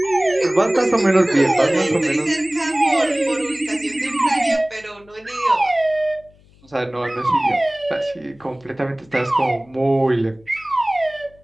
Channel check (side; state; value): left; noise; hum, 29 dB below the sound